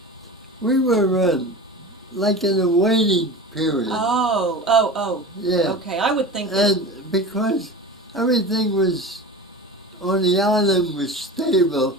like in a waiting period. Oh. Yeah. Okay, I would think that. And because everything was on the island was stable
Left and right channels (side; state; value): both; normal; correlation 0.32